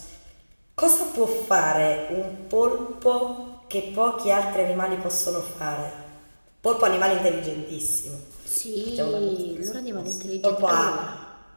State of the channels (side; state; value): both; inverted; correlation -1.00